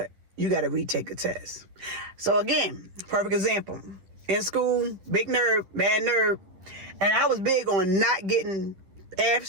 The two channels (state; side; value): late; left; 10 ms